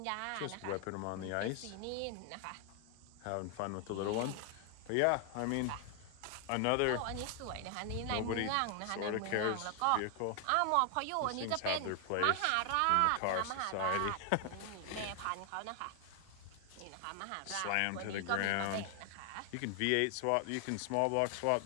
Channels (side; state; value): both; different; correlation 0.00